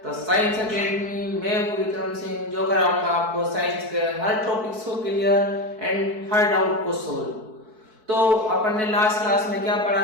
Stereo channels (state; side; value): late; left; 4.6 ms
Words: the science academy. मैं हूं विक्रम सिंह, जो कराऊंगा आपको साइंस के हर टॉपिक्स को क्लियर एंड हर डाउट को सोल्व। तो अपन ने लास्ट क्लास में क्या पढ़ा